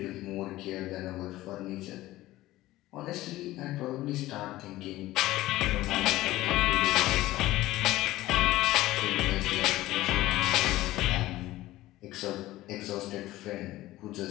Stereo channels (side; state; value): right; quieter; 16.7 dB